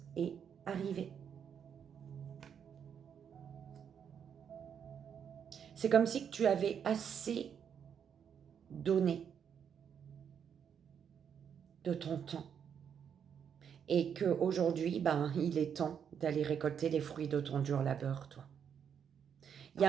est arrivé. C'est comme si tu avais assez donné de ton temps. Et qu'aujourd'hui, il est temps d'aller récolter les fruits de ton dur labeur, toi. Il y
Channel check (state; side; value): quieter; left; 7.8 dB